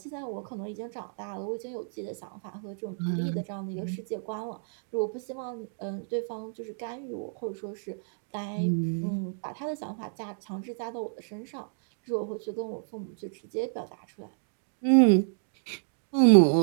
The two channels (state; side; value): silent; left; digital silence